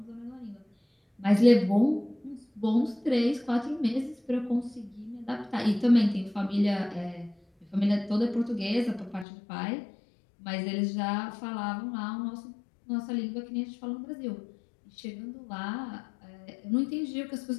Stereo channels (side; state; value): right; drops out; at 9.2 s